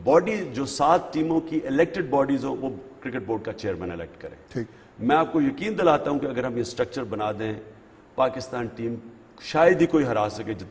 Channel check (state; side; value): identical; both; correlation 1.00